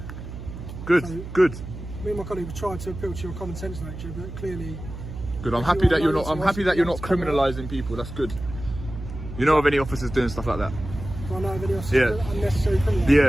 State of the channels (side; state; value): right; noise; hum, 10 dB below the sound